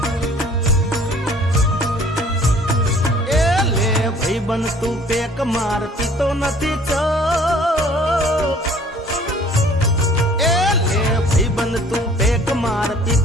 बन तू पेक मार पीतो नथी चो ए ले भाई बन तू पेक मार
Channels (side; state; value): both; normal; correlation 0.54